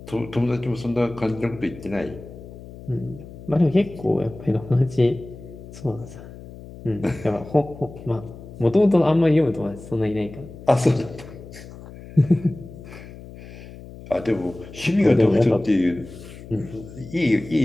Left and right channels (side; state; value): left; noise; hum, 16 dB below the sound